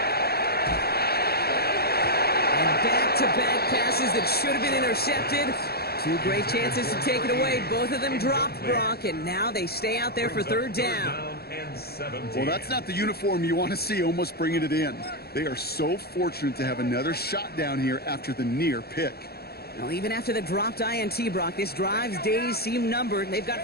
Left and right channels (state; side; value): late; right; 0.46 ms